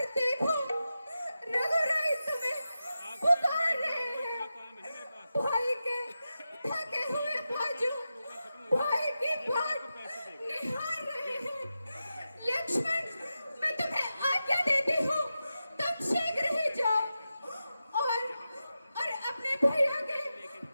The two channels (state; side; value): inverted; both; correlation -0.91